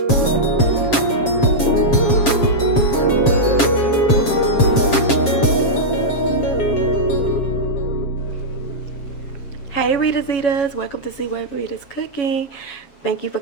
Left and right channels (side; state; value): right; late; 7.3 ms